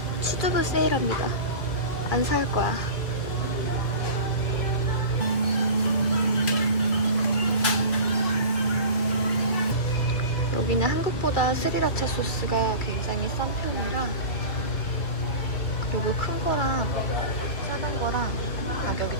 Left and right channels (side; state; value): right; late; 2.4 ms